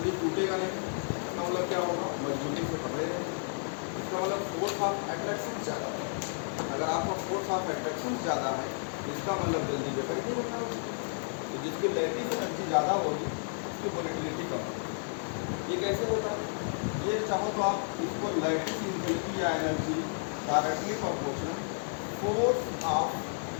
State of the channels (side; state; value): right; silent; 57 dB below the other